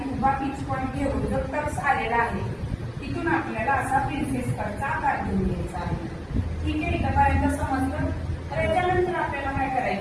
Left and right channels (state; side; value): identical; both; correlation 1.00